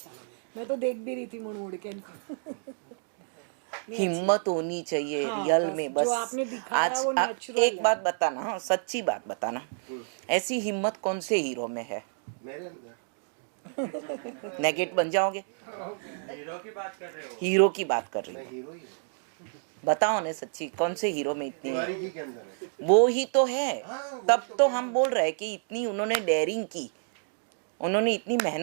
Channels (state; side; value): silent; left; digital silence